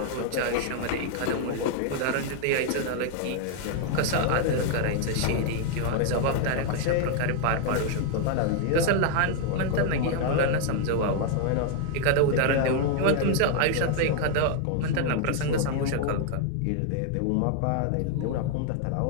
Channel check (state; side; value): different; both; correlation 0.00